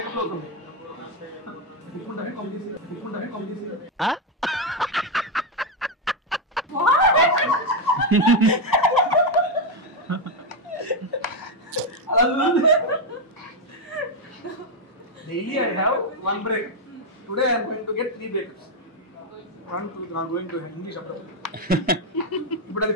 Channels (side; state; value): both; normal; correlation 0.04